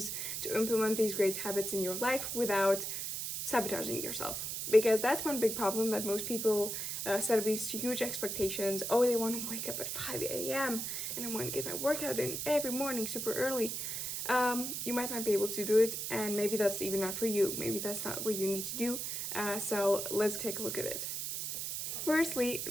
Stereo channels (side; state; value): right; noise; hiss, 3 dB below the sound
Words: to implement these great habits in your life without sabotaging yourself, because that's one big problem that most people set up these huge expectations. Oh, they want to wake up at 5 a.m. and I want to get my workout in every morning super early. You might not be able to do it, and maybe that's even not for you. Maybe that's not what you need to do. So let's take a look at it. Firstly,